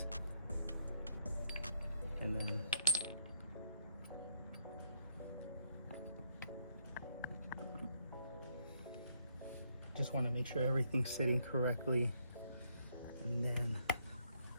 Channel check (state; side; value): inverted; both; correlation -0.72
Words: and then just want to make sure everything's sitting correctly, and then